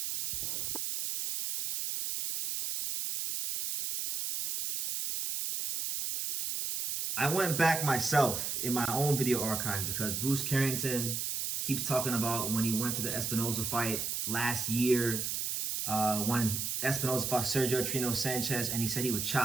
I went back myself in my own video archives because Bruce Carrington keeps talking about when he went to the Espinoza fight last year, when Espinoza fought Sergio Trino Sanchez, and he said he would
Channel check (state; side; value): noise; right; hiss, 2 dB below the sound